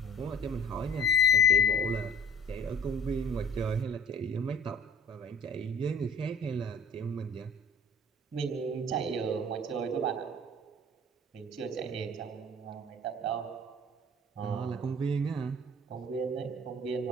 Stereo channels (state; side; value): normal; both; correlation 0.46